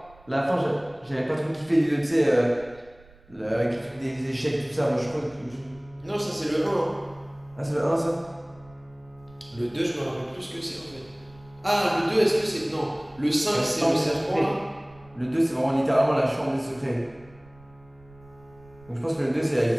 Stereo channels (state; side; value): noise; right; rumble, 26 dB below the sound